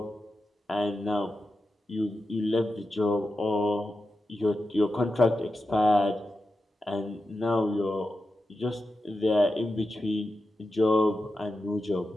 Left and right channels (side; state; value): both; normal; correlation 0.90